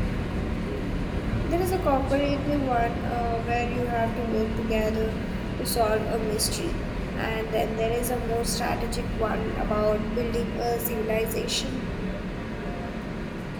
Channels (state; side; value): identical; both; correlation 1.00